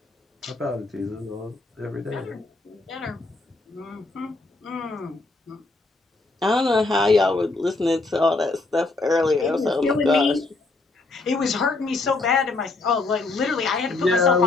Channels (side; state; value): right; quieter; 3.4 dB